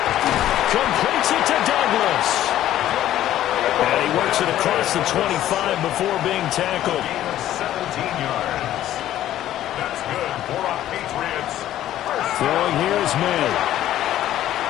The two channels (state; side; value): quieter; right; 12.8 dB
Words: Completes it to Douglas. And he works it across the 25 before being tackled. 17 yards. That's good for our Patriots. Throwing here is May.